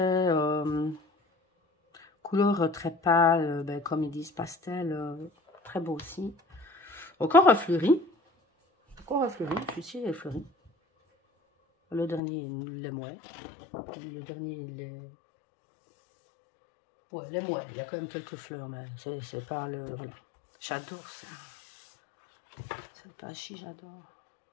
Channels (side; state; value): right; drops out; at 12.2 s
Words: couleur très pâle, ben, comme ils disent pastel, très beau aussi. Encore un fleuri. Encore un fleuri, celui-ci est fleuri. Le dernier, il est moins. Le dernier, il est... Ouais, il est moins. Il y a quand même quelques fleurs, mais c'est pas le... Voilà. J'adore ça. C'est pas chi, j'adore.